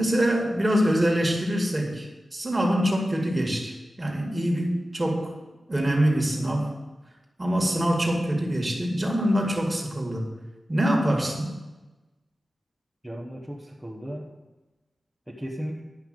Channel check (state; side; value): normal; both; correlation 0.94